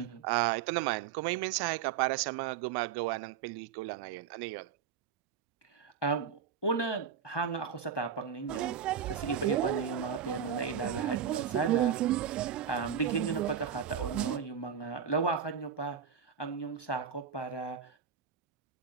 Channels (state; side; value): quieter; left; 7.6 dB